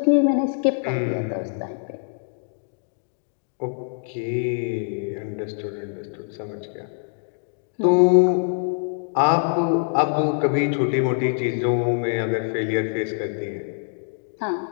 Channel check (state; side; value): silent; right; digital silence